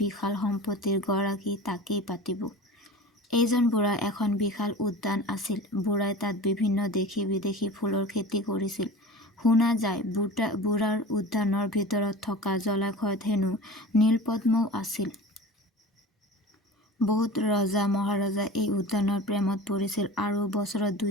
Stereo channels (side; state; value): both; normal; correlation 0.35